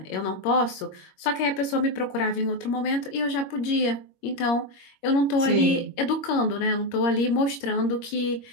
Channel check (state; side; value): late; right; 21 ms